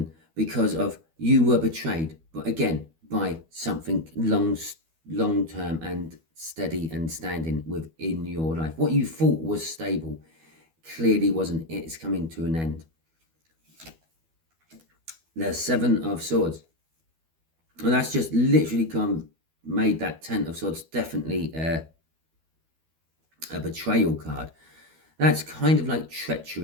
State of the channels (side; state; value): left; late; 12 ms